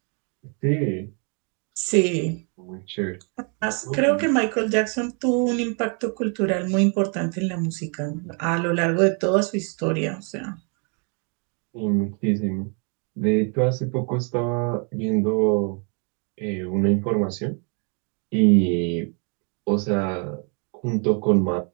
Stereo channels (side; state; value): left; quieter; 38.0 dB